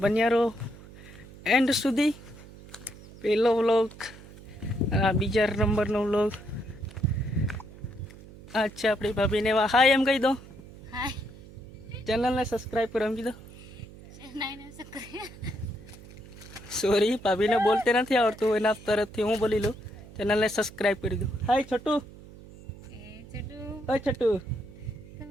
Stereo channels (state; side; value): noise; right; hum, 18 dB below the sound